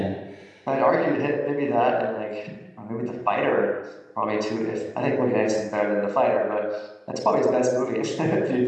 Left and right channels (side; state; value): both; identical; correlation 1.00